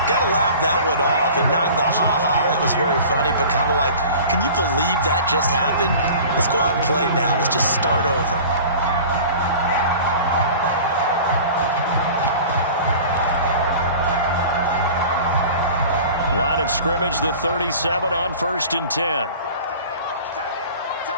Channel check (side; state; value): both; inverted; correlation -0.42